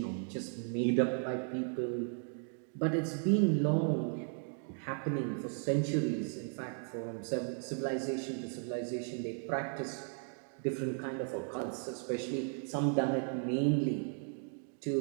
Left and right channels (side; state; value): left; silent; 54 dB below the other